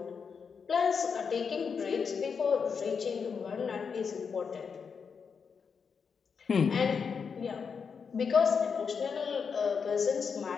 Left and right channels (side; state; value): right; quieter; 6.0 dB